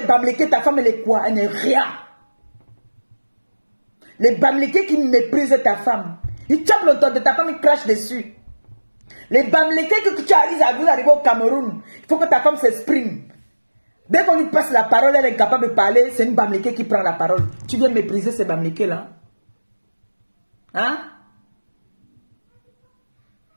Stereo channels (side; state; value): both; inverted; correlation -1.00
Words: Bamileke, ta femme, elle est quoi? Elle n'est rien. Les Bamileke qui méprisent ta femme. Ils tapent le dos de ta femme, ils crachent dessus. Les Bamileke que tu arrives à vous arriver au Cameroun, il faut que ta femme s'exprime. Dès qu'on lui passe la parole, elle est incapable de parler, c'est une Bamileke qui prend la parole. Tu viens mépriser ces Bamileke là? Hein?